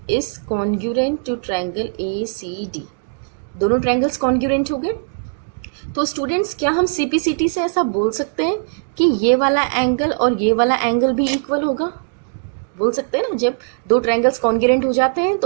is congruent to triangle ACD. दोनों ट्रायंगल्स कॉन्ग्रुएंट हो गए. तो स्टूडेंट्स, क्या हम CPCT से ऐसा बोल सकते हैं कि ये वाला एंगल और ये वाला एंगल भी इक्वल होगा? बोल सकते हैं ना, जब दो ट्रायंगल्स कॉन्ग्रुएंट हो जाते हैं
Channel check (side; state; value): left; silent; digital silence